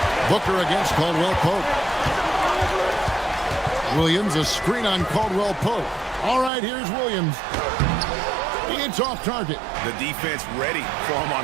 Booker against Caldwell Pope. Williams, a screen on Caldwell Pope. All right, here's Williams. It's off target. The defense ready for him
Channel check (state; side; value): drops out; left; at 6.5 s